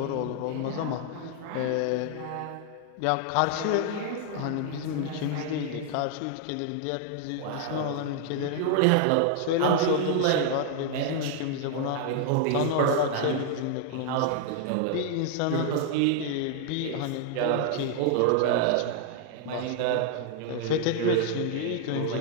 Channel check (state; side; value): different; both; correlation 0.00